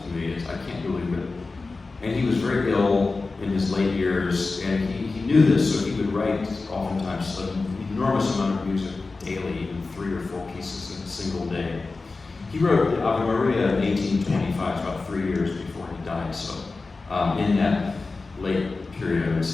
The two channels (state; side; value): quieter; right; 3.8 dB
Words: to me. I can't believe it. And he was very ill in his late years, and he knew this, so he would write oftentimes an enormous amount of music daily, even 3 or 4 pieces in a single day. He wrote the Ave Maria in 1825, about 3 years before he died, so in that late period, I would